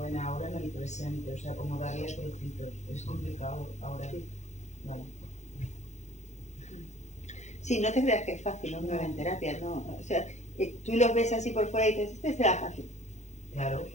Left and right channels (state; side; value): late; right; 0.34 ms